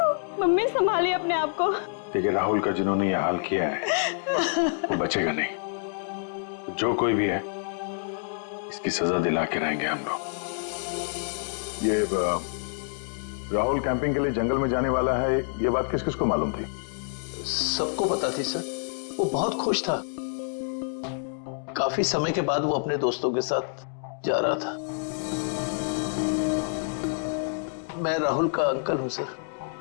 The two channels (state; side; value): silent; right; digital silence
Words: मम्मी संभालिए अपने आप को। देखिए, राहुल का जिन्होंने ये हाल किया है वो बचेगा नहीं। जो कोई भी है इसकी सजा दिला के रहेंगे हम लोग। ये राहुल कैंपिंग के लिए जंगल में जाने वाला है, ये बात किस किस को मालूम थी? सबको पता थी सर। वो बहुत खुश था। काफी समय के बाद वो अपने दोस्तों के साथ जा रहा था। मैं राहुल का अंकल हूं सर।